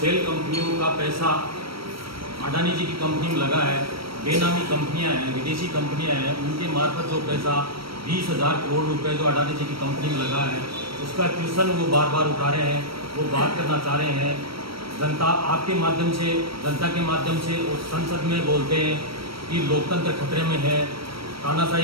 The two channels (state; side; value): late; left; 0.75 ms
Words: कंपनियों का पैसा अडानी जी की कंपनी में लगा है, बेनामी कंपनियां हैं, विदेशी कंपनियां हैं, उनके मार्फत जो पैसा 20,000 करोड़ रुपए जो अडानी जी की कंपनी में लगा है, उसका ट्यूशन वो बार बार उठा रहे हैं, वो बात करना चाह रहे हैं। जनता आपके माध्यम से, जनता के माध्यम से और संसद में बोलते हैं कि लोकतंत्र खतरे में है,